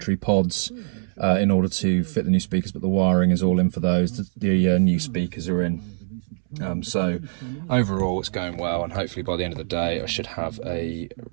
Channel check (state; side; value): silent; left; 63 dB below the other